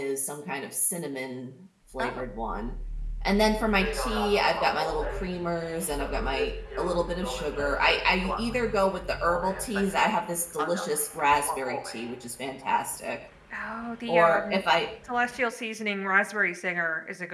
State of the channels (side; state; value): both; identical; correlation 1.00